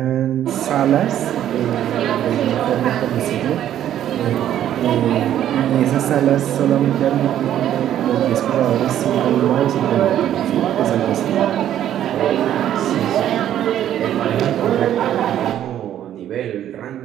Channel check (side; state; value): left; quieter; 11.2 dB